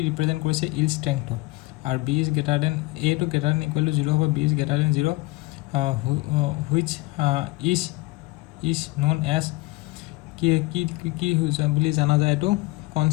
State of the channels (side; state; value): right; quieter; 22.2 dB